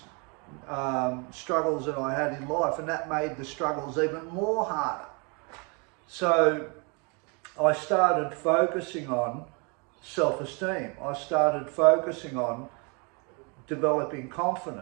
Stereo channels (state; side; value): quieter; left; 32.9 dB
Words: struggles that I had in life, and that made the struggles even more harder. So I started focusing on self-esteem. I started focusing on developing